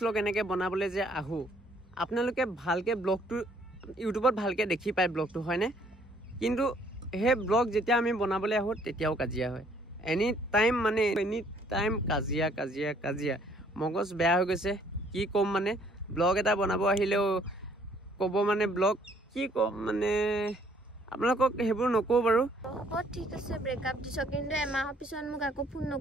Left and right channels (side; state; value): both; normal; correlation 0.63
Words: এনেকে বনাবলৈ যে আহো আপোনালোকে ভালকে ব্লগটো ইউটিউবত ভালকে দেখি পায় ব্লগটো হয়নে কিন্তু সেই ব্লগ যেতিয়া আমি বনাবলৈ আহোঁ তেতিয়াও কাজিয়া হয় এনি টাইম কাজিয়া মগজ বেয়া হৈ গৈছে কি ক'ম মানে ব্লগ এটা বনাব আহিলেও ক'ব মানে ব্লগ কি ক'ম মানে আপোনালোকক সেইবোৰ নকওঁ বাৰু ঠিক আছে ব্ৰেকআপ দিছ কিন্তু এমাহৰ পিছত মোক আকৌ ফোন